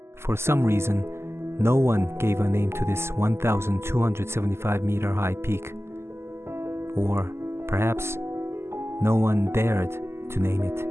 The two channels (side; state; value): left; late; 0.12 ms